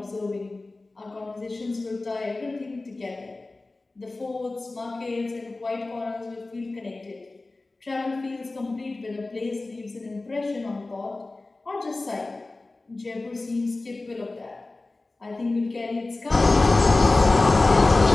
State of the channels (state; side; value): quieter; right; 3.2 dB